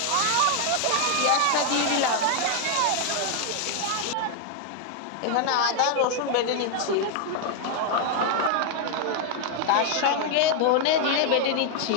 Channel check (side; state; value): both; different; correlation 0.00